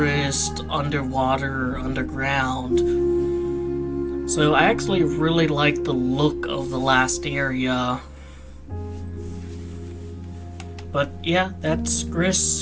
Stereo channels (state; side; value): identical; both; correlation 1.00